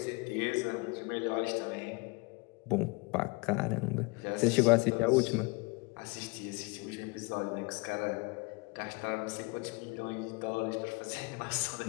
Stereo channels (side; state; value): right; quieter; 27.1 dB